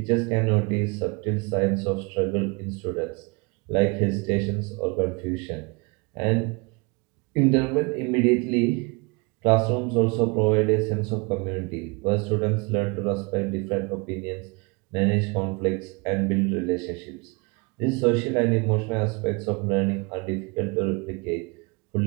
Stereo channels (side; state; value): left; quieter; 29.7 dB